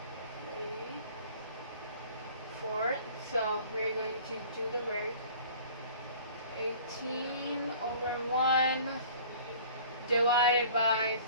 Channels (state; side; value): inverted; both; correlation -0.48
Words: 3/4. So we're going to do the work. 18/1 divided by